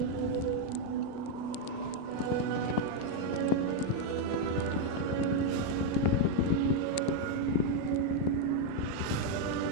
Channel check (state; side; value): different; both; correlation 0.01